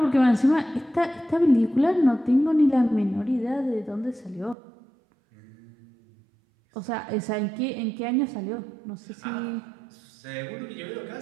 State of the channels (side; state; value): left; drops out; at 4.5 s